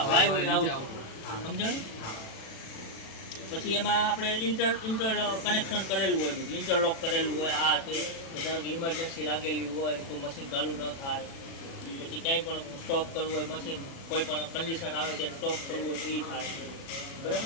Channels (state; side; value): late; right; 36 ms